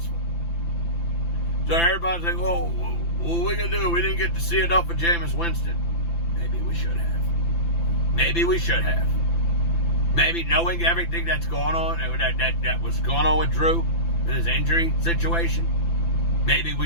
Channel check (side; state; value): right; late; 5.9 ms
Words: So everybody's like, oh, what are we going to do? We didn't get to see enough of Jameis Winston. Maybe we should have. Maybe we should have. Maybe knowing everything that's going on, and that was going on with Drew and his injury situation, maybe